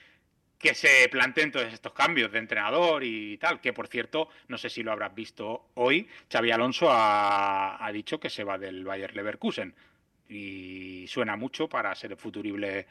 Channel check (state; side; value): identical; both; correlation 1.00